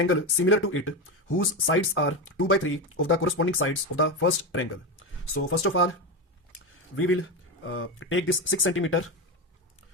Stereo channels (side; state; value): both; normal; correlation 0.15